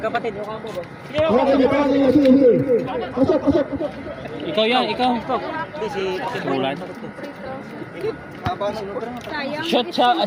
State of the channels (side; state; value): both; identical; correlation 1.00